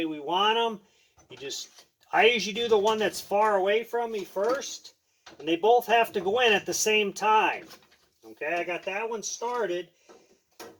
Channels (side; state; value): both; identical; correlation 1.00